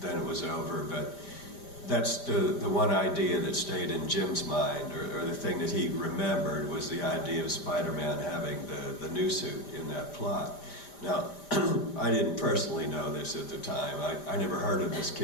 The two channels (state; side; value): late; right; 5.0 ms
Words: it was over. But that's the one idea that stayed in Jim's mind, or the thing that he remembered, was the idea of Spider-Man having the new suit in that plot. Now, I didn't personally know this at the time. I never heard of this